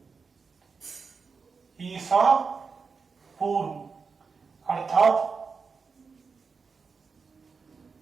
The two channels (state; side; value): quieter; left; 5.1 dB